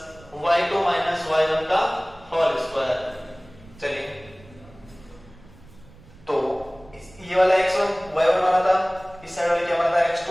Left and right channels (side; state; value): right; noise; rumble, 23 dB below the sound